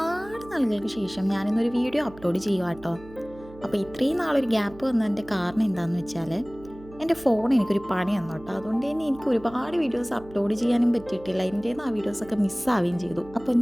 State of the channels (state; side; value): noise; right; hum, 19 dB below the sound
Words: നാളുകൾക്ക് ശേഷം ഞാനിന്നൊരു വീഡിയോ അപ്ലോഡ് ചെയ്യുക കേട്ടോ. അപ്പോൾ ഇത്രയും നാളൊരു ഗ്യാപ്പ് വന്നതിൻ്റെ കാരണം എന്താണെന്ന് വെച്ചാൽ എൻ്റെ ഫോൺ എനിക്കൊരു പണി തന്നു കേട്ടോ. അതുകൊണ്ട് തന്നെ എനിക്ക് ഒരുപാട് വീഡിയോസ് അപ്ലോഡ് ചെയ്യാനും പറ്റിയിട്ടില്ല. എൻ്റെ ആ വീഡിയോസൊക്കെ മിസ്സാവുകയും ചെയ്തു. അപ്പോൾ